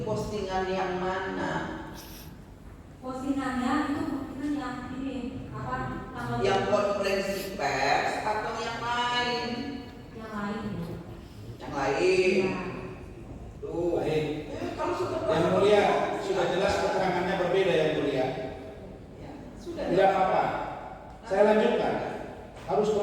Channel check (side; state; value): both; identical; correlation 1.00